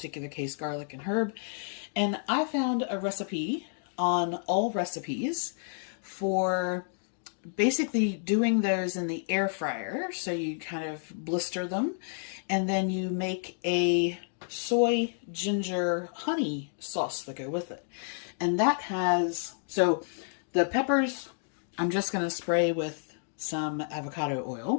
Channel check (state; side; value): silent; right; digital silence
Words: case, garlic and herb. And I found a recipe on All Recipes for basically doing those in the air fryer. So you kind of blister them and then you make a soy ginger honey sauce to go with it. And that has, so the peppers, I'm just going to spray with some avocado